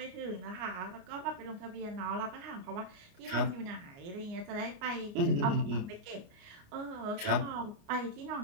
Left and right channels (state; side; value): late; left; 29 ms